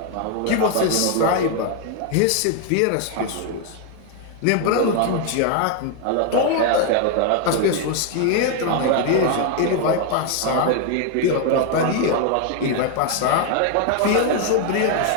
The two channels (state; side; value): different; both; correlation 0.01